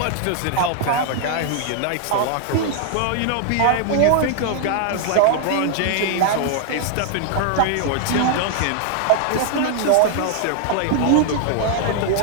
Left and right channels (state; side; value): different; both; correlation 0.00